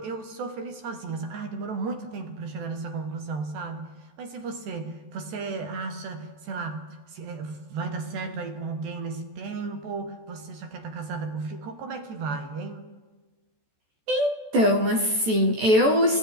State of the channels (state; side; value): late; left; 14 ms